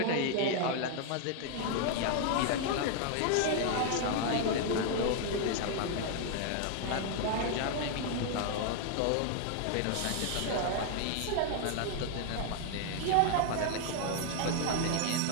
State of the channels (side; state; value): both; different; correlation 0.00